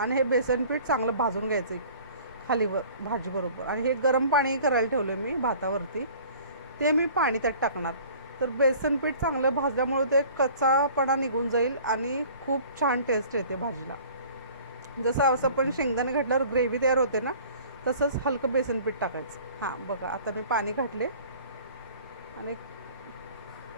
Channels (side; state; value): both; inverted; correlation -0.48